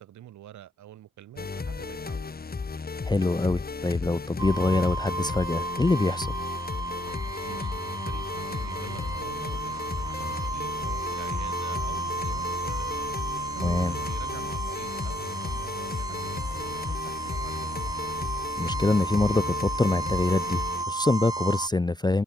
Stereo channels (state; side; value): normal; both; correlation 0.73